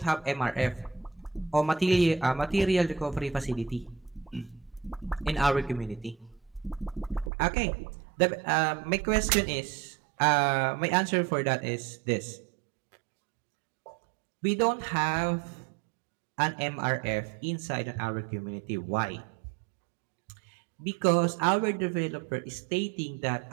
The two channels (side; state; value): left; drops out; at 7.3 s